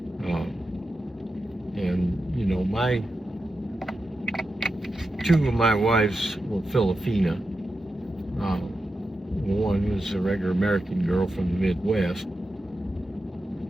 Uh, and you know, two of my wives were Filipina. One was a regular American girl from the Midwest.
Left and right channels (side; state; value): both; normal; correlation 0.90